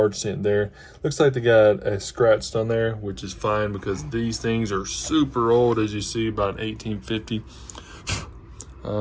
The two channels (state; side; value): identical; both; correlation 1.00